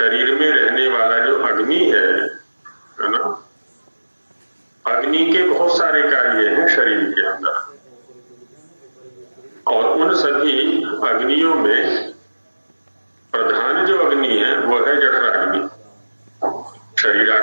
में रहने वाला जो अग्नि है ना, अग्नि के बहुत सारे कार्य हैं शरीर के अंदर, और उन सभी अग्नियों में प्रधान जो अग्नि है वो है जठराग्नि।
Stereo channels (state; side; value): inverted; both; correlation -1.00